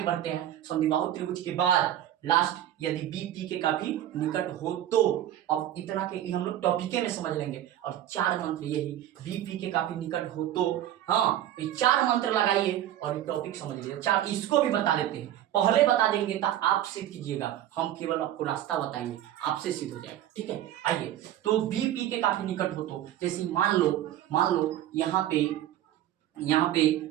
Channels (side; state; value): left; quieter; 12.3 dB